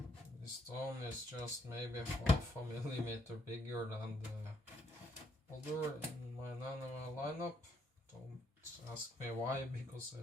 This stone is just maybe half a millimeter bigger than the other in my Nanua lineup. Don't ask me why, because I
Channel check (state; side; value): normal; both; correlation 0.72